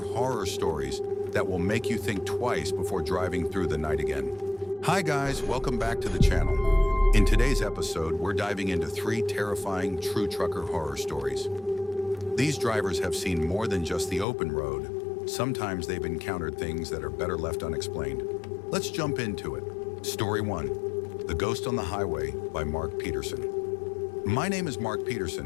stories that will make you think twice before driving through the night again. Hi guys, welcome back to the channel. In today's episode, we're diving into 3 terrifying true trucker horror stories. These drivers have seen more than just the open road. Sometimes they've encountered things that are better left unexplained. Let's jump into it. Story 1, The Ghost on the Highway by Mark Peterson. My name is Mark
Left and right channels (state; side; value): drops out; right; at 14.2 s